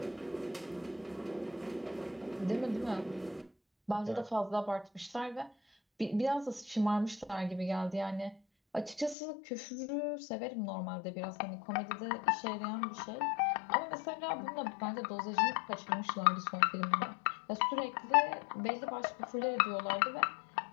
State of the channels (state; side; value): drops out; right; at 9.2 s